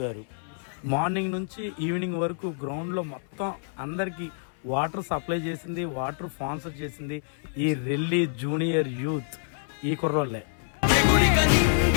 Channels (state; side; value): silent; right; 60 dB below the other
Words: గారు. మార్నింగ్ నుంచి ఈవినింగ్ వరకు గ్రౌండ్లో మొత్తం అందరికీ వాటర్ సప్లై చేసింది, వాటర్ స్పాన్సర్ చేసింది ఈ రెల్లి జూనియర్ యూత్ ఈ కుర్రోళ్ళే. ఎగురిక